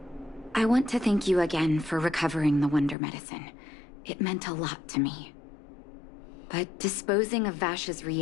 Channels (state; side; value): drops out; right; at 3.0 s